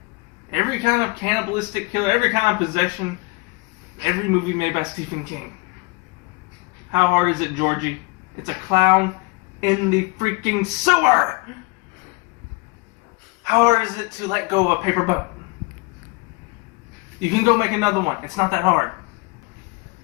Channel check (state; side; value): quieter; right; 26.9 dB